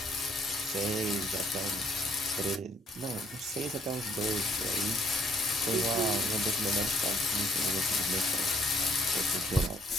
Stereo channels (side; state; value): both; normal; correlation 0.65